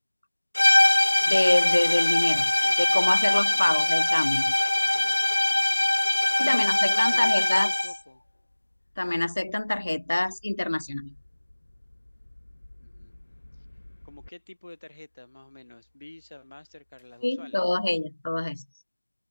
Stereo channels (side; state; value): both; inverted; correlation -1.00